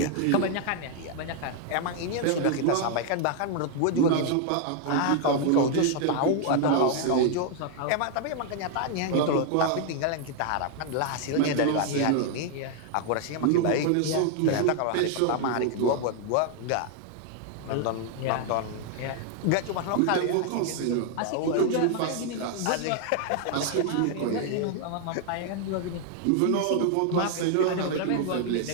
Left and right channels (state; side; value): different; both; correlation 0.00